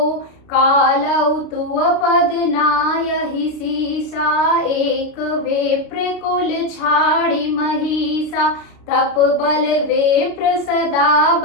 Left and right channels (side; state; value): right; late; 32 ms